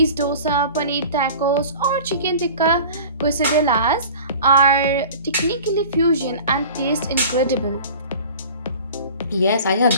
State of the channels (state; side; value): inverted; both; correlation -0.41